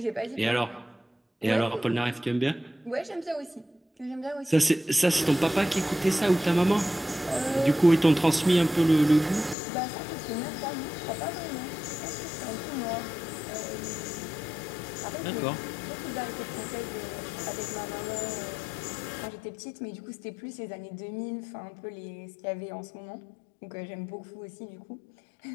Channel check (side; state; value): right; drops out; at 9.6 s